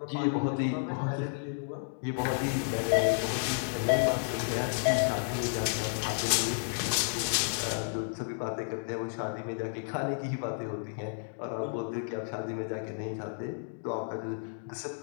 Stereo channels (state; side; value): silent; right; digital silence